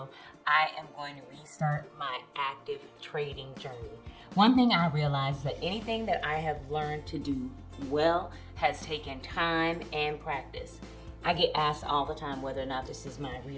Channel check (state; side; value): identical; both; correlation 1.00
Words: I am going to restart my active trading journey. One thing I realized is that anything that I have learned to do well has taken time and practice. I get asked all the time whether or not this is my